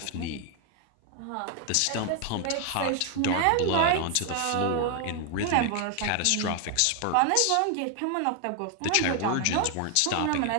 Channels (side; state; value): both; different; correlation 0.01